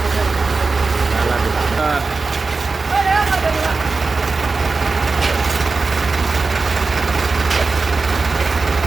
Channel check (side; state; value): left; quieter; 4.0 dB